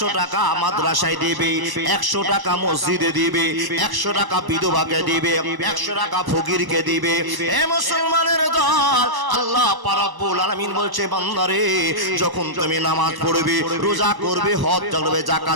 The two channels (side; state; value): left; late; 1.1 ms